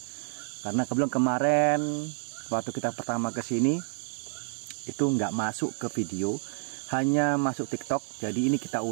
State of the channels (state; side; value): silent; left; 59 dB below the other